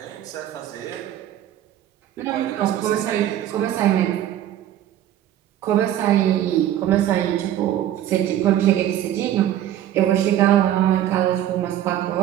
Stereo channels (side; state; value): left; quieter; 11.9 dB